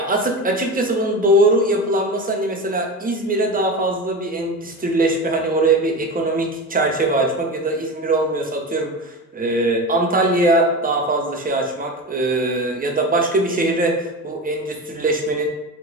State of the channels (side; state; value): both; normal; correlation 0.26